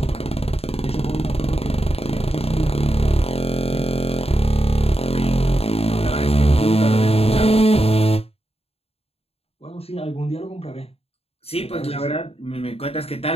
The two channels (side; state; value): right; late; 0.29 ms